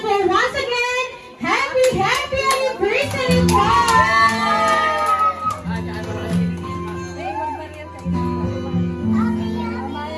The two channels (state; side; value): identical; both; correlation 1.00